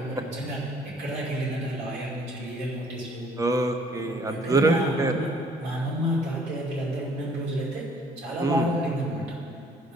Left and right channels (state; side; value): normal; both; correlation 0.59